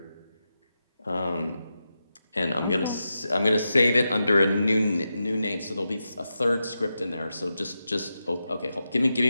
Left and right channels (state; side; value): inverted; both; correlation -0.89